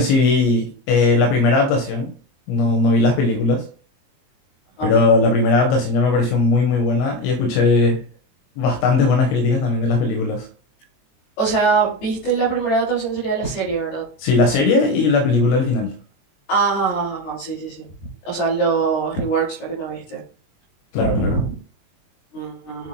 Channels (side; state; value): right; late; 22 ms